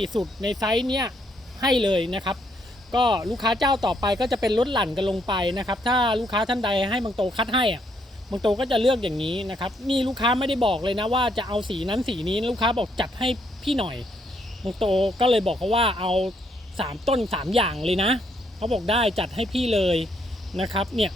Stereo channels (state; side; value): normal; both; correlation 0.73